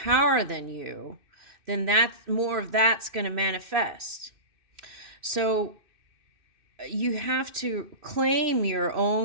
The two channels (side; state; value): left; late; 2.6 ms